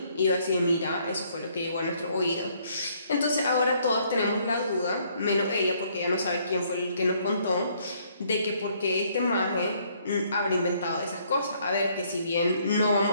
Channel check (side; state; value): both; inverted; correlation -0.66